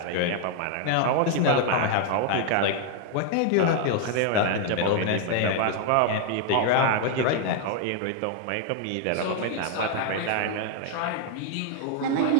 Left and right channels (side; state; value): both; different; correlation 0.00